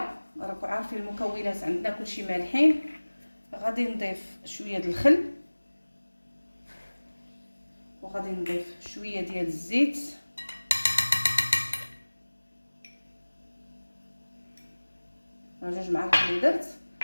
راكم عارفين المكونات عندنا كلشي مالحين. غادي نضيف شويه ديال الخل وغادي نضيف شويه ديال الزيت. جوج معالق اللي درت.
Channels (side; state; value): both; inverted; correlation -1.00